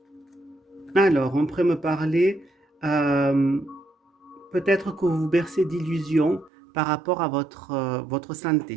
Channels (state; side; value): drops out; left; at 6.5 s